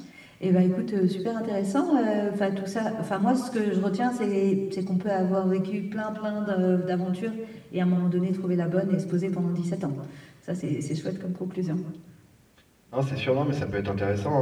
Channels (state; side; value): identical; both; correlation 1.00